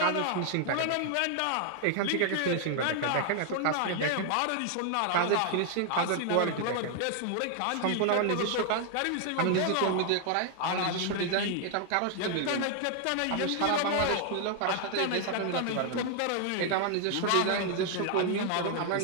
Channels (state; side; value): different; both; correlation 0.00